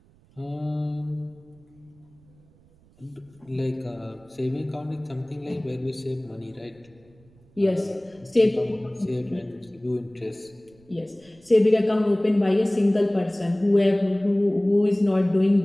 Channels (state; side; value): noise; right; rumble, 29 dB below the sound